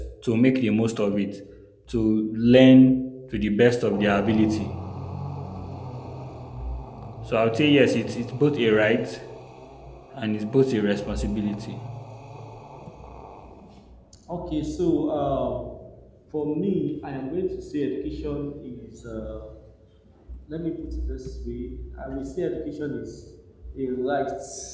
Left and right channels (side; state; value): both; identical; correlation 1.00